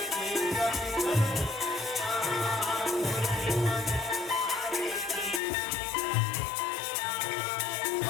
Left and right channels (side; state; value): right; drops out; at 5.4 s